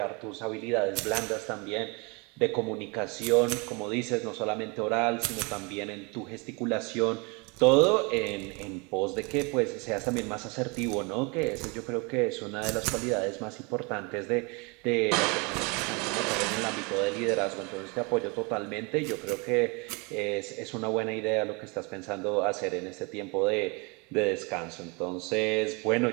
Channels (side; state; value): left; quieter; 30.2 dB